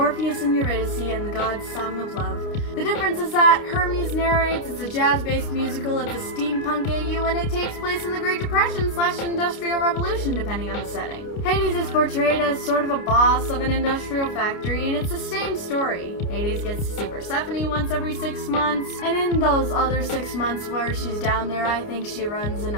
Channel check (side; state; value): right; late; 29 ms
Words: and Eurydice and the god's song of love. The difference is that Hermes narrates, it's a jazz-based musical, it's a steampunk AU, and it takes place in the Great Depression / Industrial Revolution, depending on the setting. Hades is portrayed as sort of a boss of an industrial factory, and it's the same story. Hades gets to see Persephone once every 6 months, and in those other 6 months where she's down there, I think she runs an